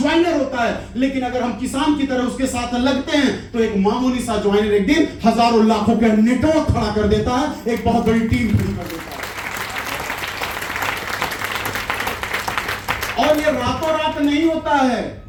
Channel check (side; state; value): both; identical; correlation 1.00